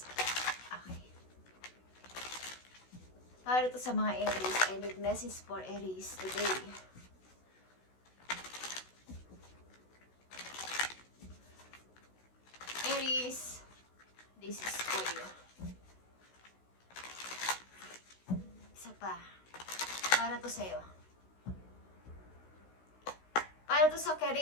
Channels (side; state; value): right; late; 16 ms